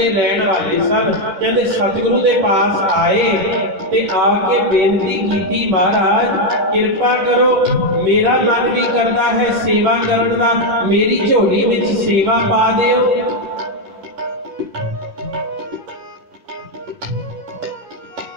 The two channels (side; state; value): left; late; 10 ms